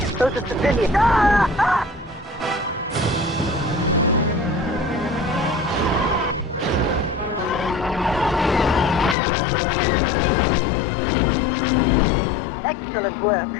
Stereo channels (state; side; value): drops out; right; at 9.2 s